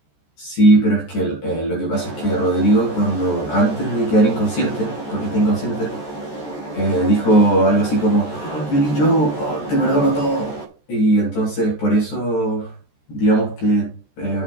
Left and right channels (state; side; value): late; right; 14 ms